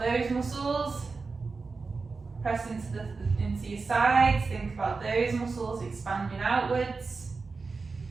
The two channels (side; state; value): left; quieter; 4.3 dB